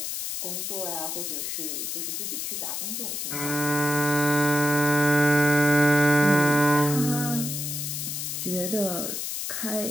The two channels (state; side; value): noise; left; hiss, 4 dB below the sound